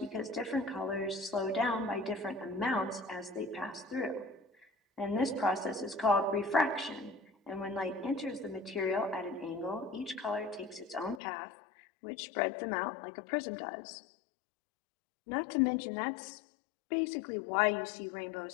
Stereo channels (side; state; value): right; drops out; at 11.2 s